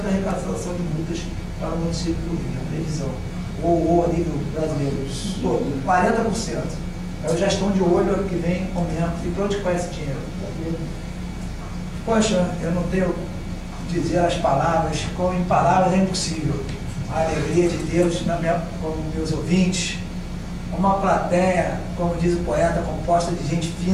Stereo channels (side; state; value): both; identical; correlation 1.00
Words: da arrecadação de multas para o município do Rio, a previsão, ou a nível brasileiro, todo, 40%. Então já estão de olho ano que vem aumento. E para onde vai esse dinheiro? Poxa, eu não tenho que dizer as palavras, como em palavras é impossível. A alegria de Deus como meus ouvintes, uma plateia, como diz o poeta, composta de gente